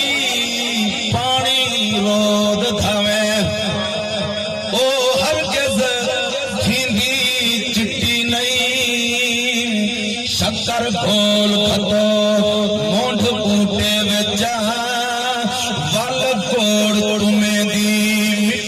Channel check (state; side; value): identical; both; correlation 1.00